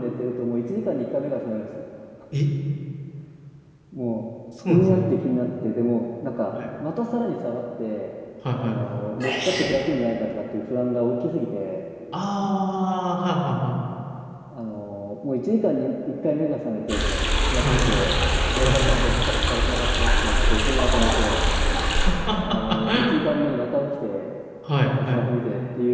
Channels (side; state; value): both; identical; correlation 1.00